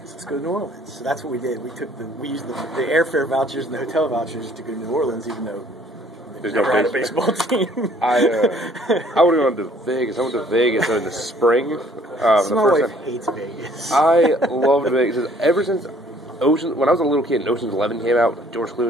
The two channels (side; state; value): both; normal; correlation 0.59